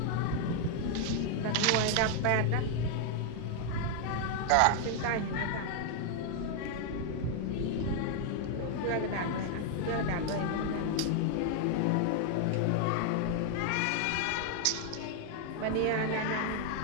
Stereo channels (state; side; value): different; both; correlation 0.00